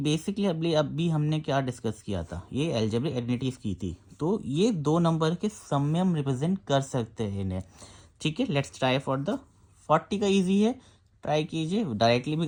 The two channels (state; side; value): identical; both; correlation 1.00